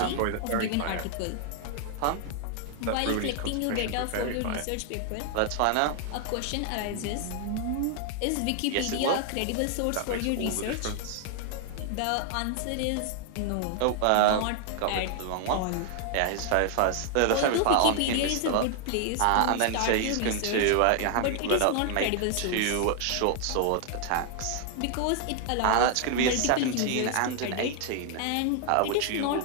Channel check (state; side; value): different; both; correlation 0.00